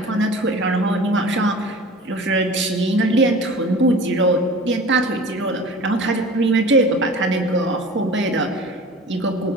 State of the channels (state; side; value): normal; both; correlation 0.40